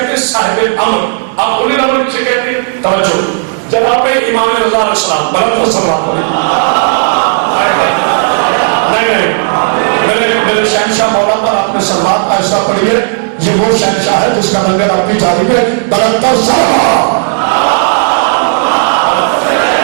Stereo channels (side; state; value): left; silent; digital silence